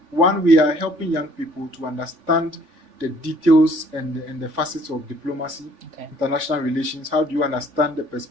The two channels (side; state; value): left; late; 3.5 ms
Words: one, we are helping young people to understand the details and the facets of diplomacy, international relations. How do you understand the